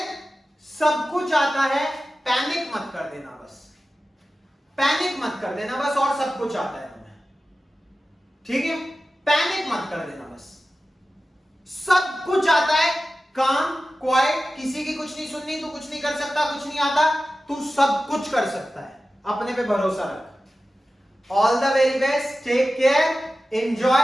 सब कुछ आता है, पैनिक मत कर देना बस, पैनिक मत कर देना बस, और सब कुछ आता है तुम्हें, ठीक है, पैनिक मत कर देना बस, सब कुछ आता है, काम क्वाइट, किसी की कुछ नहीं सुननी, तू कुछ नहीं कर सकता, कुछ नहीं आता, तू सब कुछ कर सकता है, अपने पे भरोसा रख। All the very best, take care,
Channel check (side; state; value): both; normal; correlation 0.94